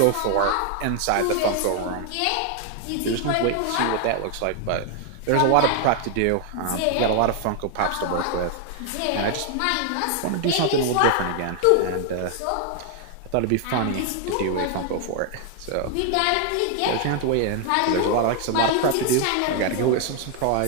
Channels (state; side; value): different; both; correlation 0.00